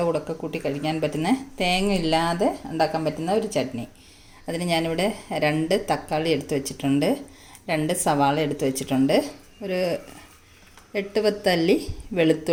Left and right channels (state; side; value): identical; both; correlation 1.00